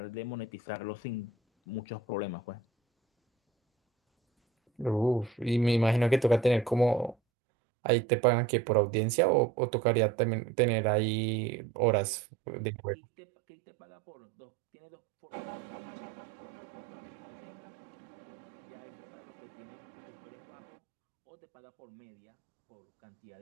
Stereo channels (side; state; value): left; drops out; at 7.2 s